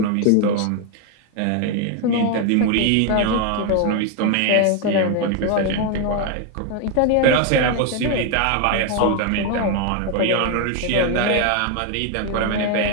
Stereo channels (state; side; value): different; both; correlation 0.01